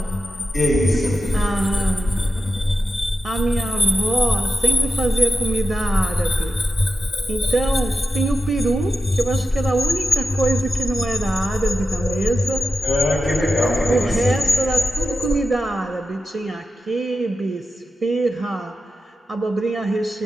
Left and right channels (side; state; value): both; normal; correlation 0.91